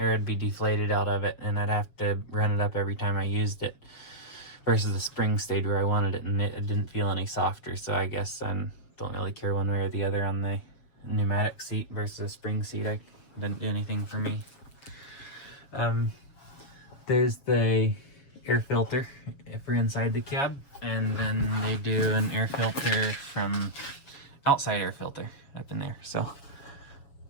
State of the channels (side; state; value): right; late; 7.2 ms